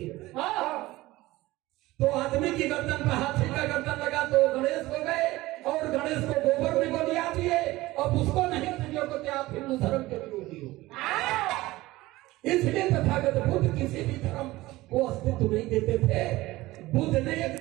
तो आदमी की गर्दन पर हाथी का गर्दन लगा तो गणेश हो गए, और गणेश को गोबर में गोलियां दिए, अब उसको नहीं समझो कि आप हिंदू धर्म के विरोधी हो। इसलिए तथागत बुद्ध किसी भी धर्म को अस्तित्व नहीं देते थे। बुद्ध ने एक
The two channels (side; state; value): left; quieter; 18.5 dB